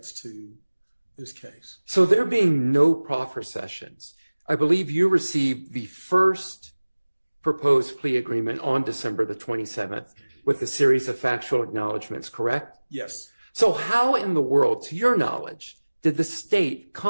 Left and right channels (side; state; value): both; inverted; correlation -1.00